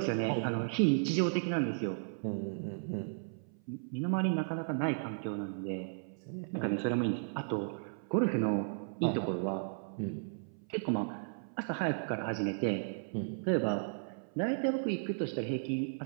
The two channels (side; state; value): left; silent; 55 dB below the other